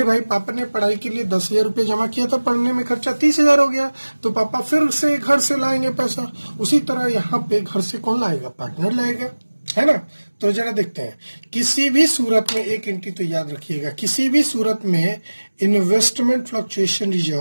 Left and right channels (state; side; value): inverted; both; correlation -1.00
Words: भाई, पापा ने पढ़ाई के लिए 10,000 रुपये जमा किया था, पढ़ने में खर्चा 30,000 हो गया, तो पापा फिर से घर से लाएंगे पैसा। उसी तरह यहाँ पे घर से कौन लाएगा? पार्टनर लाएगा, है ना? तो जरा देखते हैं, किसी भी सूरत में एक एंट्री तो याद रखिएगा, किसी भी सूरत में इन्वेस्टमेंट फ्लक्चुएशन